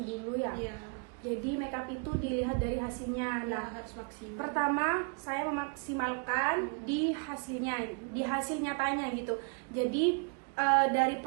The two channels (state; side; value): quieter; left; 37.5 dB